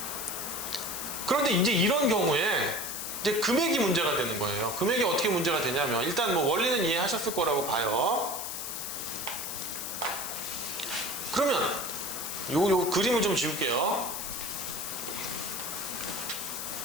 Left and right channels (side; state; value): left; noise; hiss, 5 dB below the sound